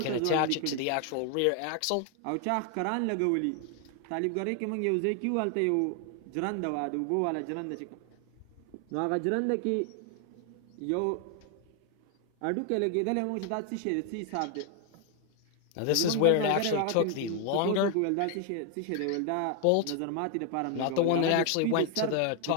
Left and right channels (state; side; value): different; both; correlation 0.01